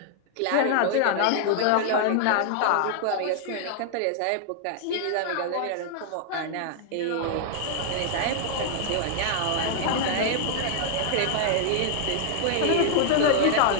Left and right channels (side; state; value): both; different; correlation -0.01